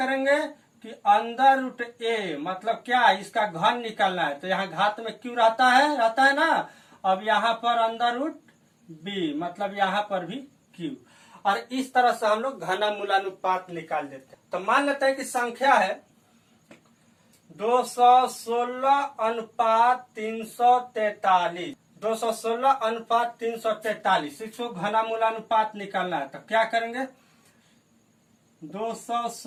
कि अंडर रूट ए, मतलब क्या, इसका घन निकालना है। तो यहाँ घात में क्यों रहता है ना। अब यहाँ पर अंडर रूट बी, मतलब यहाँ पर भी क्यू। और इस तरह से हम लोग घनमूलानुपात निकाल देते हैं। तो मान लेते हैं कि संख्या है 216 अनुपात 343, 216 अनुपात 343, इसको घनमूलानुपात निकालना है। तो क्या करेंगे,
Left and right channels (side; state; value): both; identical; correlation 1.00